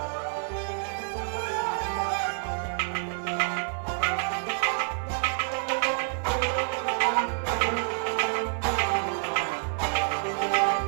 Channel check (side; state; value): left; silent; 56 dB below the other